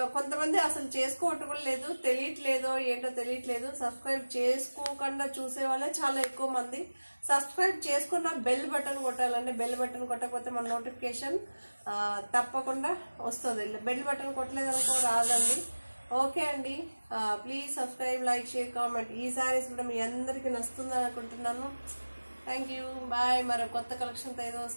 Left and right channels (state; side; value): inverted; both; correlation -1.00